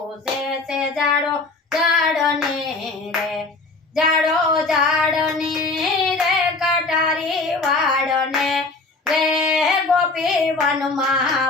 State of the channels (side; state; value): right; quieter; 3.5 dB